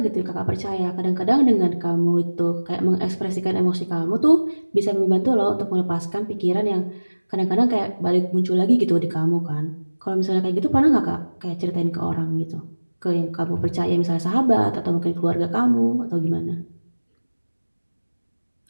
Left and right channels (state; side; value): inverted; both; correlation -1.00